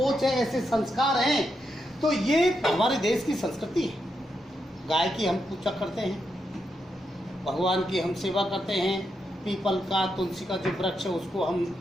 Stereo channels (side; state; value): both; normal; correlation 0.83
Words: है, ऐसे संस्कार हैं, तो ये हमारे देश की संस्कृति है। गाय की हम पूजा करते हैं, भगवान की हम सेवा करते हैं, पीपल का, तुलसी का जो वृक्ष है उसको हम